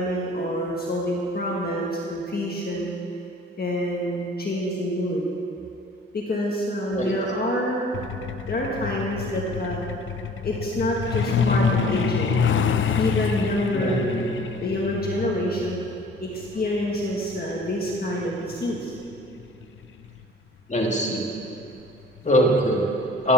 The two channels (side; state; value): both; normal; correlation 0.49